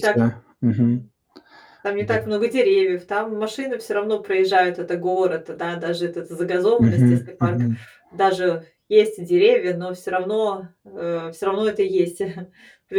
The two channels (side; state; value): both; identical; correlation 1.00